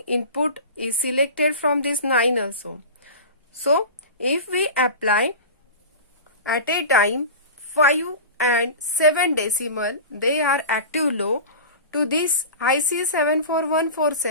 input is selected from this 9 also. So if we apply at a time 5 and 7 decimal, they are active low to this IC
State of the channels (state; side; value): inverted; both; correlation -0.32